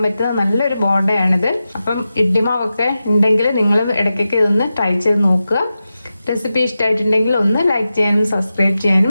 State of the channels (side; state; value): both; inverted; correlation -0.92